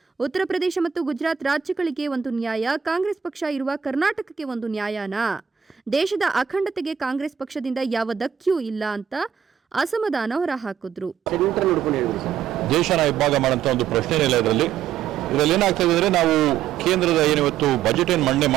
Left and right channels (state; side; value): quieter; left; 8.5 dB